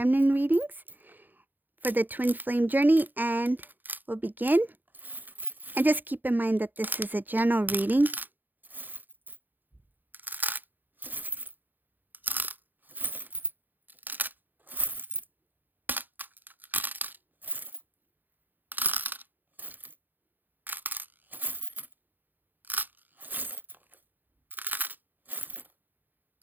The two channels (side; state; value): left; late; 0.087 ms